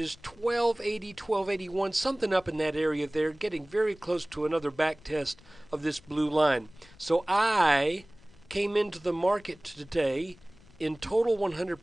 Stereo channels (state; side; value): noise; left; rumble, 25 dB below the sound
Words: 1280, 1281, something up in that area there, getting very close to another back test of this blue line. So I came into the market today in total